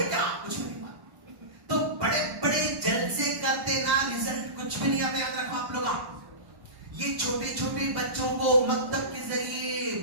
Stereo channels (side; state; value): left; late; 1.1 ms